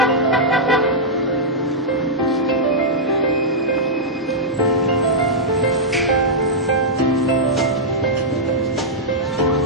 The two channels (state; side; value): normal; both; correlation -0.09